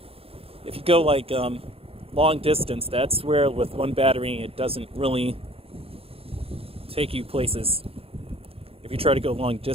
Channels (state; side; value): late; left; 0.28 ms